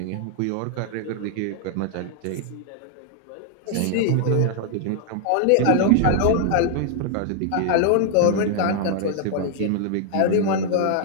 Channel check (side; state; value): both; different; correlation 0.00